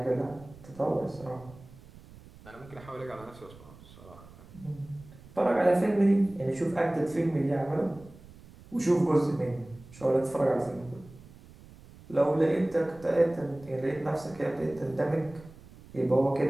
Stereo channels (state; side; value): noise; right; rumble, 21 dB below the sound